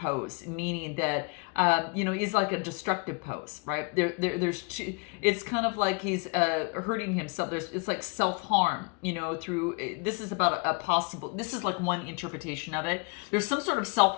meaning that, he's like a destructive pose, right? There's 2, it's kind of like he's hurting himself. It's like self-harm, through, this is about this is like one interpretation of it. There's some sort of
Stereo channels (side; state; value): right; quieter; 32.0 dB